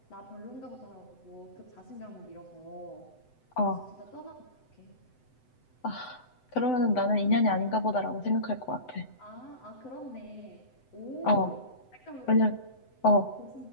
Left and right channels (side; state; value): right; late; 7.9 ms